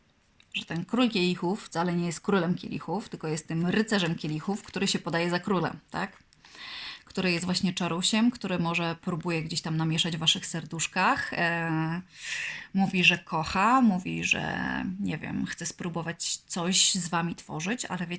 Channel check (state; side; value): identical; both; correlation 1.00